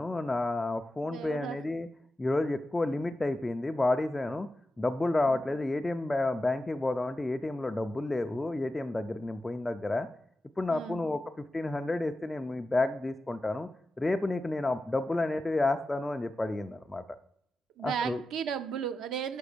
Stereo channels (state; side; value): normal; both; correlation 0.92